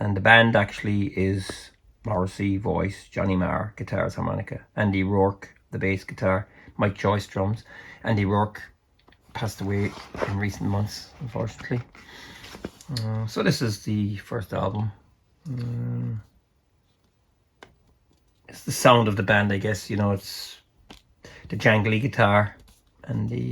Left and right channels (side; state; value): both; identical; correlation 1.00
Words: the band actually is Morrissey, voice, Johnny Marr, guitars, harmonica, Andy Rourke, the bass guitar, Mike Joyce, drums. Andy Rourke passed away in recent months, unfortunately. So this is the first album. It's the sound of the band, I guess. You know, it's the jangly guitar and